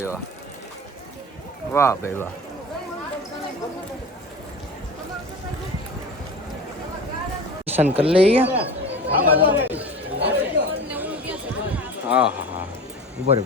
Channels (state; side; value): normal; both; correlation 0.33